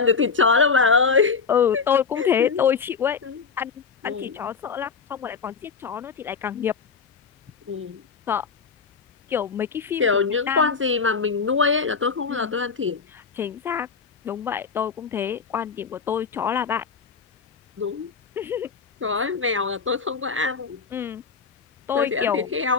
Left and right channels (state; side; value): quieter; right; 5.4 dB